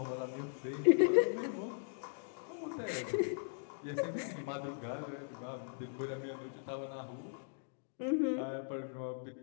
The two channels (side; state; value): right; silent; digital silence